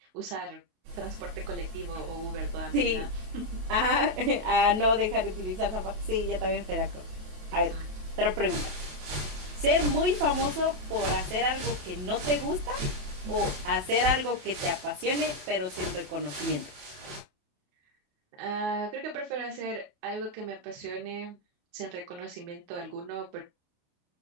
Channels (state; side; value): late; left; 27 ms